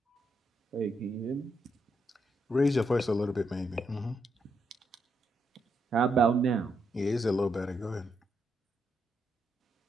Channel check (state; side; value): normal; both; correlation 0.80